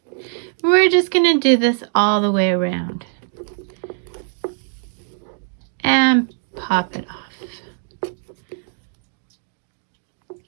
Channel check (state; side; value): silent; left; digital silence